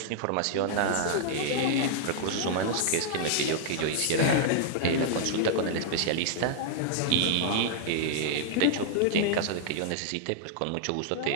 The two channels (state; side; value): different; both; correlation -0.01